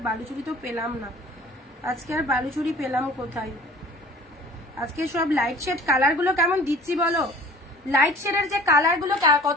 বালুচুরি তো পেলাম না, আজকে আর বালুচুরি পেলাম কোথায়? আজকে সব লাইট শেড কালার গুলো কেমন দিচ্ছি বলো, লাইট শেডের যে কালার গুলো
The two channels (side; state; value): both; normal; correlation 0.47